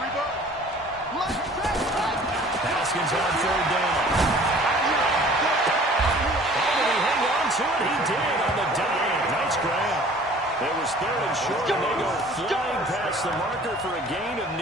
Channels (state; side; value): normal; both; correlation 0.50